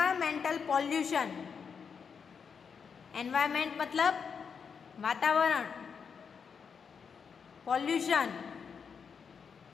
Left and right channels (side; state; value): right; quieter; 6.3 dB